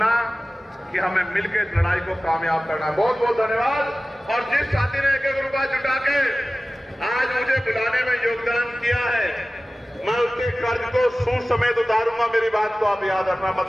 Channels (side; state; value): both; normal; correlation 0.97